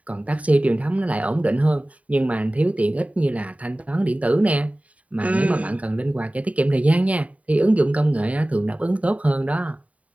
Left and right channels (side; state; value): left; late; 0.068 ms